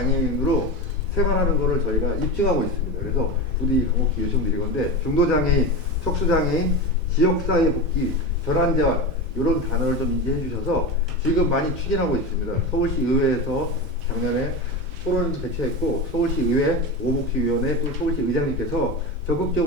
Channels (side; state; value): both; normal; correlation 0.23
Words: 생활하는 것을 저희가 입증하고 있습니다. 그래서 부디 간곡히 요청드리건데 중도장애인, 척수장애인, 지역사회 복귀, 전환재활 이런 단어를 좀 인지해 주셔서 지금 많이 추진하고 있습니다. 서울시 의회에서 작년에 토론을 개최했고 서울시 의회 오복지위원회 또 서울시 의장님께서